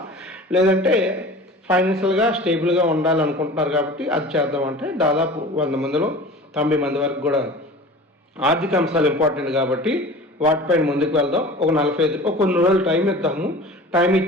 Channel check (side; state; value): both; normal; correlation 0.39